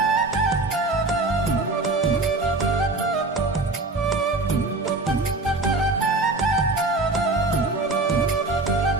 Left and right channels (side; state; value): left; quieter; 3.2 dB